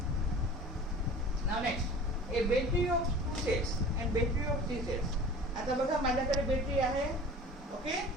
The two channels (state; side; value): normal; both; correlation 0.41